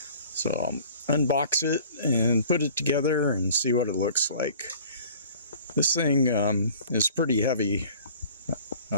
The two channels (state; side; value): inverted; both; correlation -0.49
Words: I'll unbox it and put it together and see what it looks like. This thing is pretty heavy.